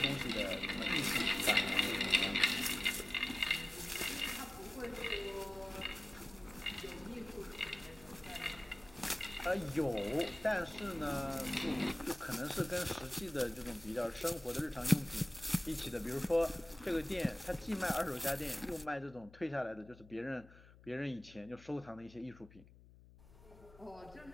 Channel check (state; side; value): noise; left; hum, 22 dB below the sound